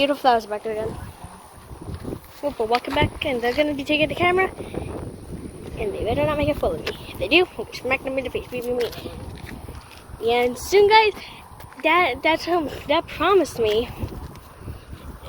flowers back there again. Oh, we're walking back, and they're gonna be taking the camera, and they better not make a fool of me. If they do, we'll smack them in the face. And soon, guys, Dad promised me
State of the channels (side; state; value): both; identical; correlation 1.00